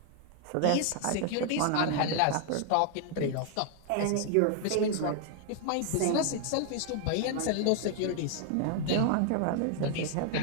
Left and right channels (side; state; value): both; different; correlation 0.00